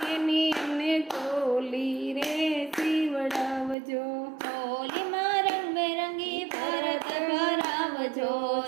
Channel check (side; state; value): left; drops out; at 3.8 s